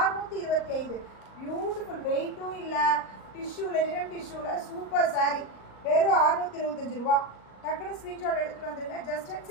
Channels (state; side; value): late; right; 38 ms